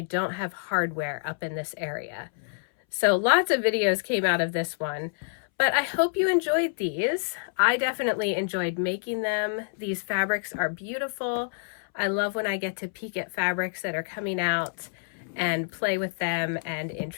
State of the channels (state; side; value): silent; right; 60 dB below the other